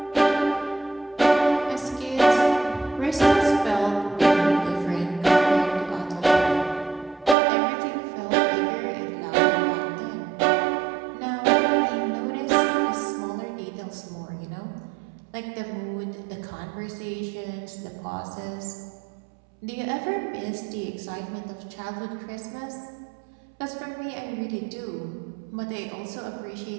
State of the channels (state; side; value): drops out; left; at 7.4 s